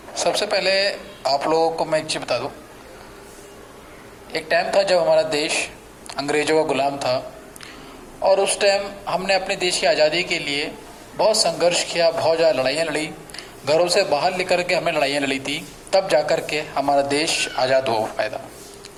सबसे पहले आप लोगों को मैं एक चीज़ बता दूं। एक टाइम था जब हमारा देश अंग्रेज़ों का गुलाम था और उस टाइम हमने अपने देश की आज़ादी के लिए बहुत संघर्ष किया, बहुत ज़्यादा लड़ाइयाँ लड़ी, घरों से बाहर लेकर के हमें लड़ाइयाँ लड़ी थी, तब जाकर के हमारा देश आज़ाद हो पाया था।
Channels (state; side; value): identical; both; correlation 1.00